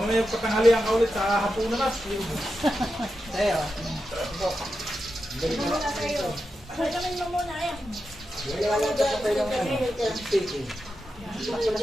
patanghalian ka ulit sa hapunan na. Tayo.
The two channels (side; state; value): both; normal; correlation 0.89